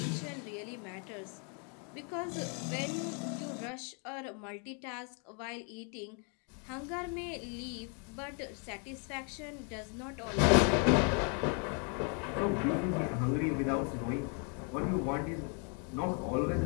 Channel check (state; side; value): quieter; right; 38.9 dB